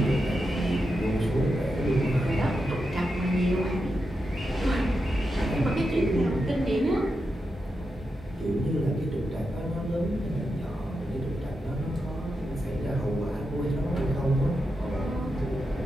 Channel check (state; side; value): normal; both; correlation 0.88